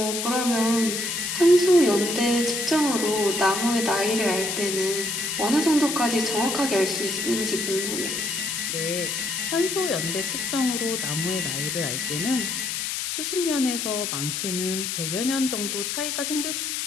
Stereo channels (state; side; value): noise; left; hiss, 2 dB below the sound